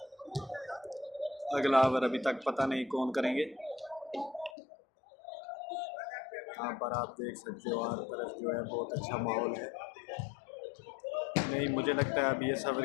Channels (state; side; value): drops out; right; at 4.5 s